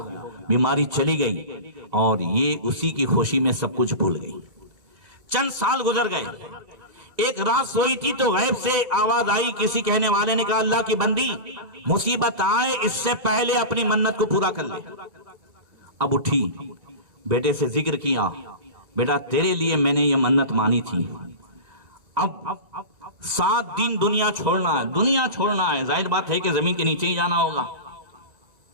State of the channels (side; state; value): left; late; 2.3 ms